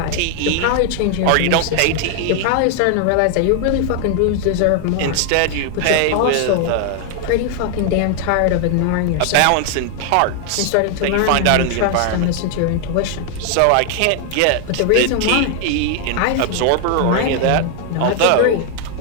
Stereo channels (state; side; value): different; both; correlation 0.00